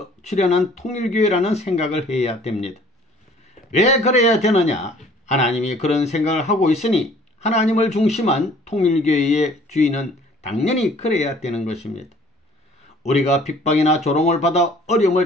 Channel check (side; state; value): both; normal; correlation 0.54